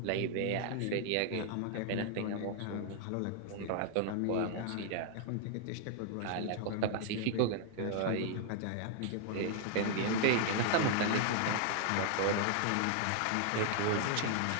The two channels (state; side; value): different; both; correlation 0.00